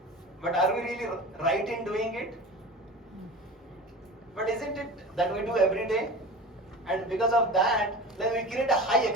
But are we really right in doing it? But isn't it that we do every day? And because of that, then we create a high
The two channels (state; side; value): normal; both; correlation 0.34